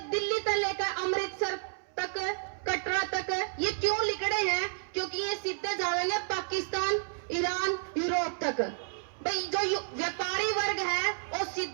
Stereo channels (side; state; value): left; silent; 57 dB below the other